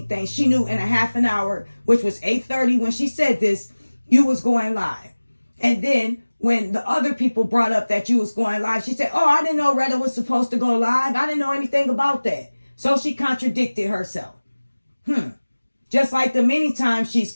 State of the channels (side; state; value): both; inverted; correlation -1.00